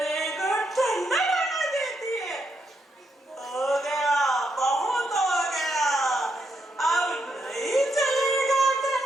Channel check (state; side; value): normal; both; correlation 0.80